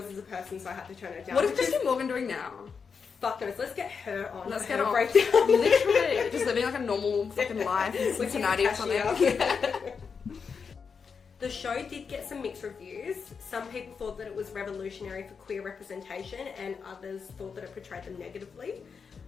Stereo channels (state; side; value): quieter; right; 5.8 dB